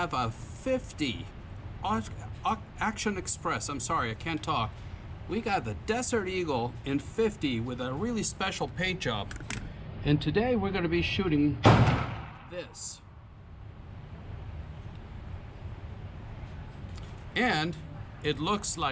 a 50 Action Express. I'm sorry, I can't talk. We got the Desert Eagle in 50 with a really special paint job, and today we're going to be shooting this. And it looks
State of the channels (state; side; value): identical; both; correlation 1.00